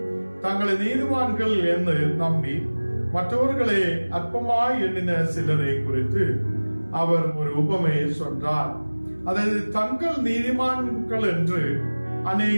தங்களை நீதிமான்கள் என்று நம்பி மற்றவர்களை அற்பமாய் எண்ணின சிலரை குறித்து அவர் ஒரு உபமையை சொன்னார். அதாவது தங்கள் நீதிமான்கள் என்று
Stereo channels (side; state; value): both; inverted; correlation -1.00